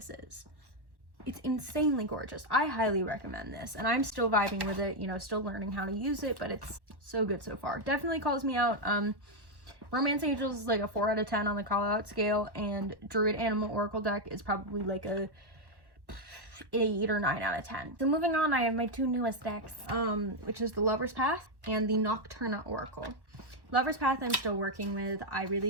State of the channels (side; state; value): left; late; 1.1 ms